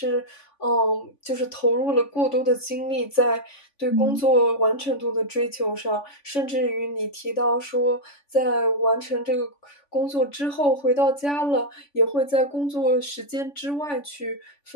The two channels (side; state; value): right; late; 3.5 ms